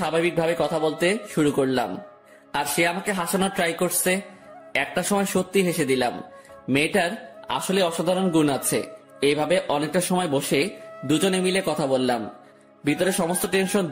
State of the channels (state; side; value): identical; both; correlation 1.00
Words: কথা বলতে শুরু করলাম। আর সে আমাকে হাসানোর ট্রাই করছে। একটা সময় সত্যি হেসে দিলাম। মেয়েটার আসলে অসাধারণ গুণ আছে। এইভাবে অনেকটা সময় বসে দুজনে মিলে কথা বললাম। ভিতরে সমস্ত টেনশন